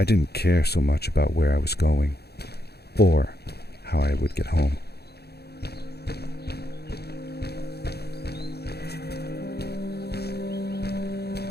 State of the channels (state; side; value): late; right; 0.47 ms